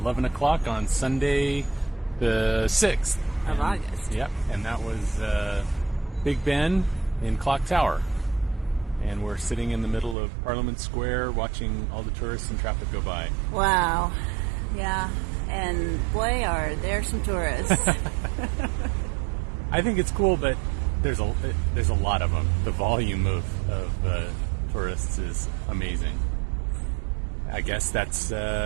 o'clock on Sunday the 6th. Of August. Yep, and that was Big Ben in Clock Tower. And we're sitting in the middle of Parliament Square watching all the tourists and traffic go by. Wow. Yeah. And boy, are there some tourists. I think it's cool, but there's a lot of them. The volume of tourists is amazing. I guess that's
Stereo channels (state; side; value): drops out; left; at 10.2 s